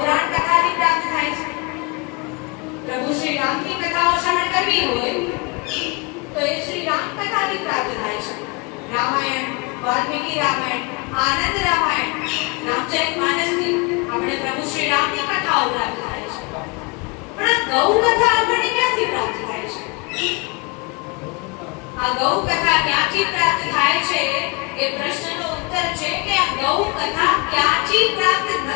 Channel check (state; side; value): quieter; right; 29.1 dB